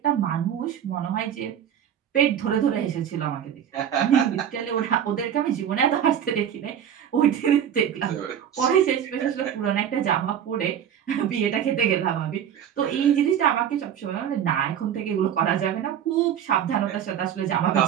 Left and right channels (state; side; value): quieter; left; 9.3 dB